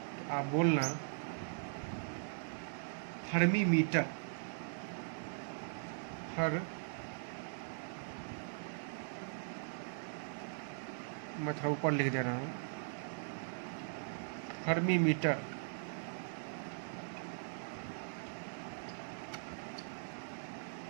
तो आप बोलना हर्मी मीटर। मैं थोड़ा ऊपर लिख दे रहा हूँ, fermi metre.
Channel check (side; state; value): left; silent; digital silence